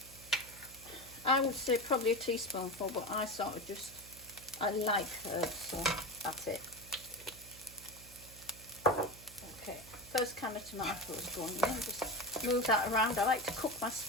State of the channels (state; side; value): noise; right; hum, 19 dB below the sound